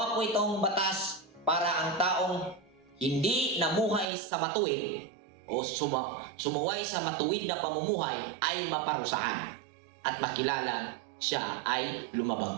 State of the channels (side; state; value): left; drops out; at 4.0 s